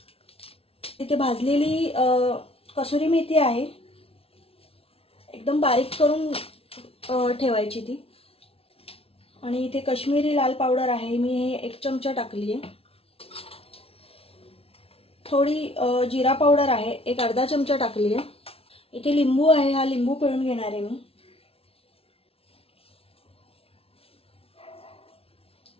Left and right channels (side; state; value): right; late; 0.27 ms